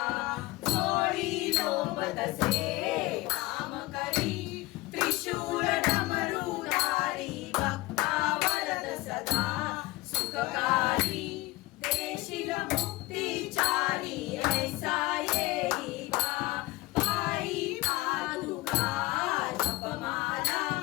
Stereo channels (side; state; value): right; quieter; 20.1 dB